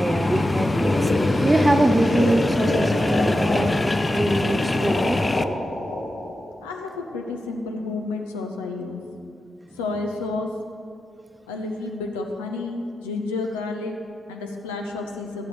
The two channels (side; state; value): both; normal; correlation 0.89